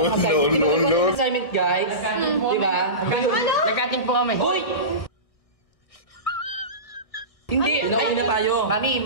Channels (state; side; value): late; right; 1.6 ms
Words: Assignment, guys. Diba? Nagkating po kami. Uy! Hindi, inuwi na tayo. Mami,